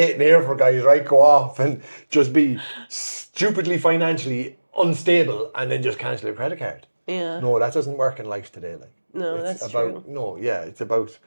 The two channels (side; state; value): both; inverted; correlation -1.00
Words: here for, guys, right? Go off and just be stupidly financially unstable and then just cancel your credit card. Yeah. No, that doesn't work in life today, like. No, it's that's about, true. No, yeah, it's about